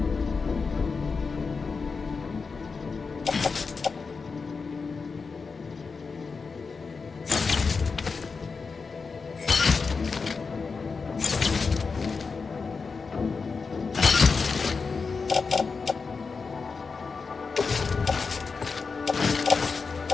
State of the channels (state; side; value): quieter; right; 4.8 dB